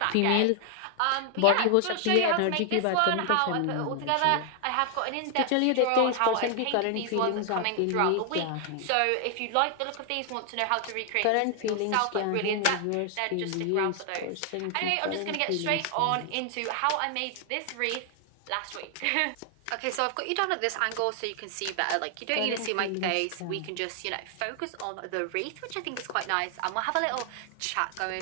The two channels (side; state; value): both; different; correlation 0.00